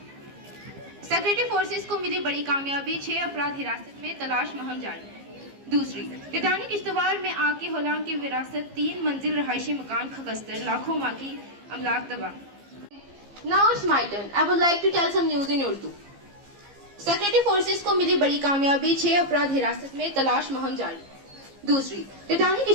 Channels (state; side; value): late; left; 15 ms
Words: Secretary forces को मिली बड़ी कामयाबी, 6 अपराध हिरासत में, तलाश मुहिम जारी। दूसरी, टाइटैनिक किश्तवाड़ में आग की होलांग की विरासत, 3 मंजिल रहायशी मकान खगस्तर, लाखों माँ की अमलाक तबाह। Now it's my turn. I would like to tell some news in Urdu. Secretary forces को मिली बड़ी कामयाबी, 6 अपराध हिरासत में, तलाश मुहिम जारी। दूसरी, टाइटैनिक